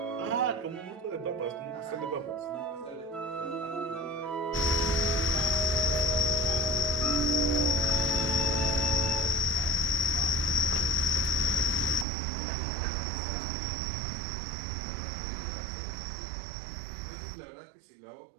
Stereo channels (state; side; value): drops out; left; at 12.1 s